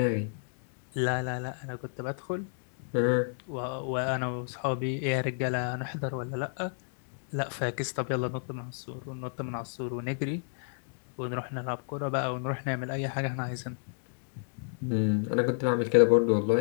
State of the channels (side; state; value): right; silent; digital silence